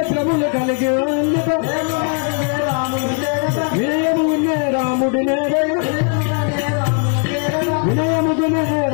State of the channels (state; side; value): quieter; right; 38.3 dB